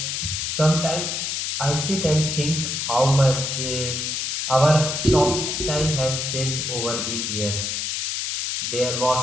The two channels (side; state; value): left; noise; hiss, 2 dB below the sound